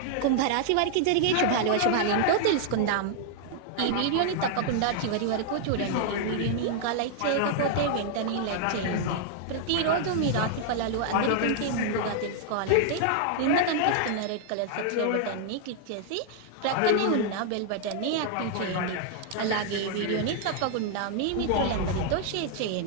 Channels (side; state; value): both; different; correlation -0.01